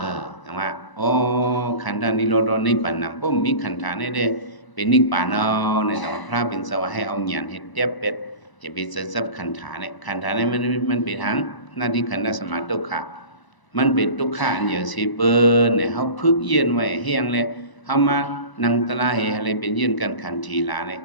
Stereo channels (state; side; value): late; right; 1.0 ms